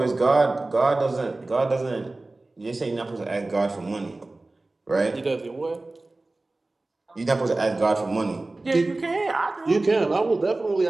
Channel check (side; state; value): left; quieter; 3.0 dB